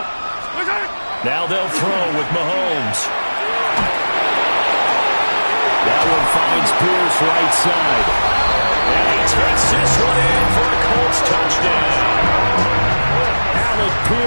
Now they'll throw with Mahomes. That one finds Pierce right side. And he takes this one in for a Colts touchdown. Alec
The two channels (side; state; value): both; inverted; correlation -1.00